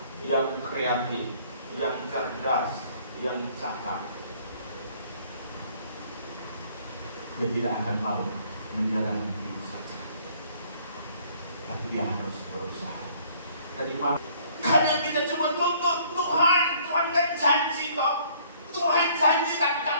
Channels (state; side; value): inverted; both; correlation -0.59